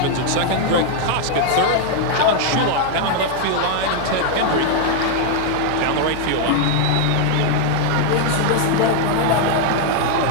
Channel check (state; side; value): different; both; correlation 0.00